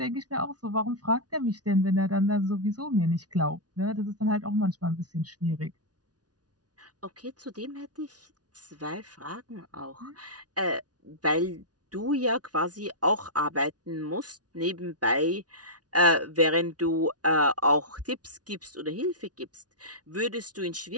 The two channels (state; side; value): late; left; 0.69 ms